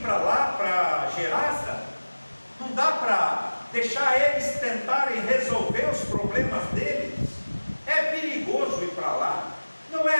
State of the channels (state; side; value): inverted; both; correlation -1.00